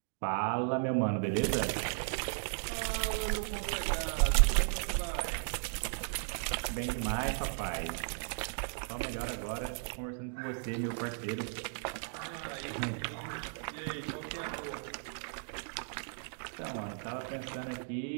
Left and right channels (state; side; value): silent; left; digital silence